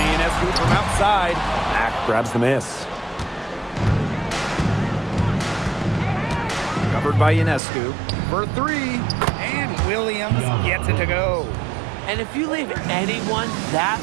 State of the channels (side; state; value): left; drops out; at 7.6 s